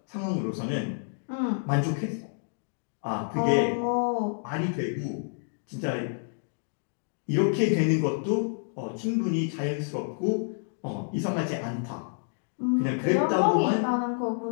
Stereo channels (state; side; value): silent; right; digital silence